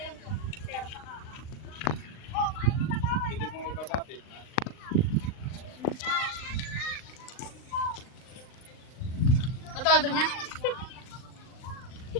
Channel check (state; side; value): late; right; 39 ms